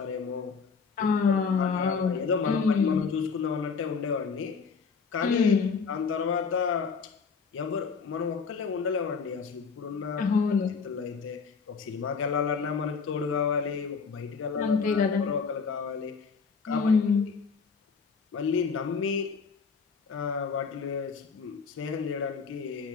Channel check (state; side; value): quieter; right; 5.4 dB